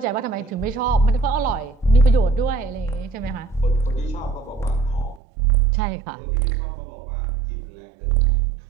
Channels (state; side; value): drops out; left; at 5.2 s